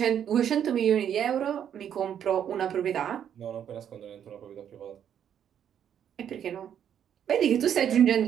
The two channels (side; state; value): left; quieter; 9.2 dB